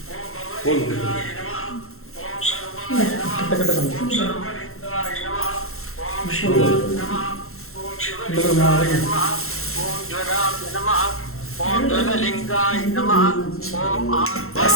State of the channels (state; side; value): late; right; 0.62 ms